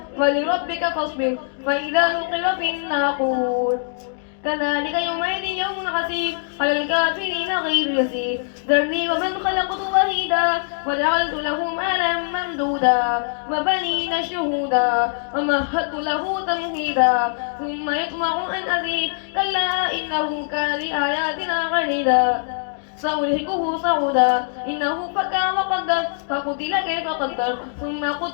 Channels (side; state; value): right; silent; digital silence